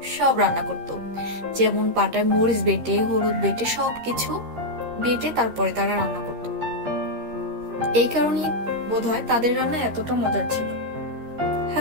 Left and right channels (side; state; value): left; late; 13 ms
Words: সব রান্না করত। যেমন পাটায় মরিচ বেটে, হলুদ বেটে, সবকিছু বেটে তারপরে তারা রান্না করত। এই কারণেই বোধহয় তাদের রান্না এতটা মজার ছিল।